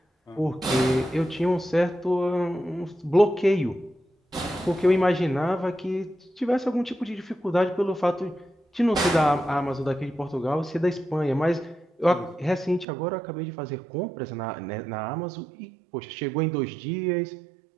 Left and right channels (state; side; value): drops out; left; at 12.9 s